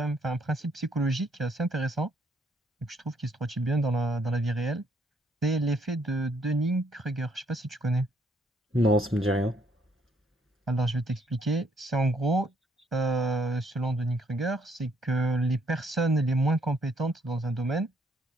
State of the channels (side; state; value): both; normal; correlation 0.69